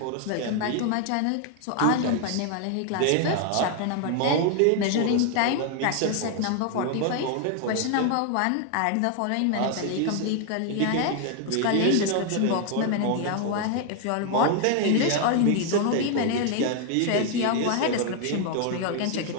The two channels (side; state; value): both; different; correlation 0.00